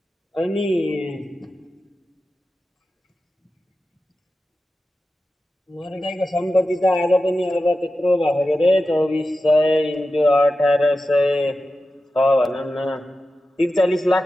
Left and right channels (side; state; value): both; normal; correlation 0.92